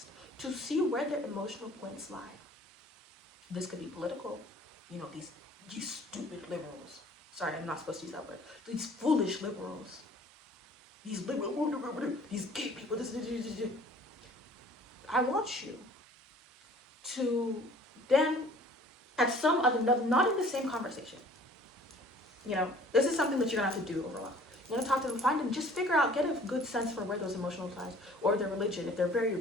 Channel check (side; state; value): both; normal; correlation 0.52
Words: to see where their emotional points lie. This could be political. These stupid liberals. Sorry, I'm not supposed to use that word. These foolish liberals. these liberal, these gay people, I want you to then, at some other, not in the same conversation, this is something that you're gonna have to do over a while. You want to talk to them, find them, just figure out, get a good sense for where those emotional ties, or their religion, if they're very